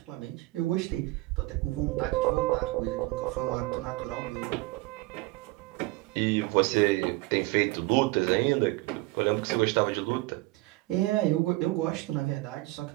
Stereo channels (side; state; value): left; quieter; 21.2 dB